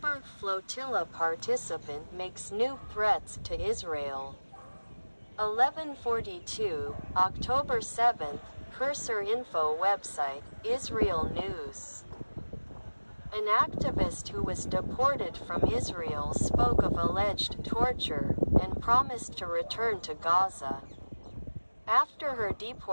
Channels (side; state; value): both; inverted; correlation -1.00